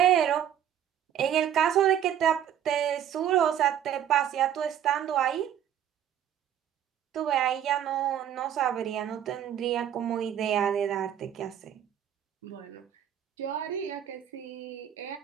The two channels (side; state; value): left; quieter; 10.1 dB